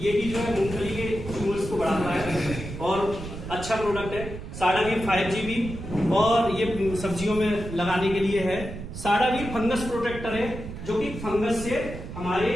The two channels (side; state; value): right; noise; rumble, 9 dB below the sound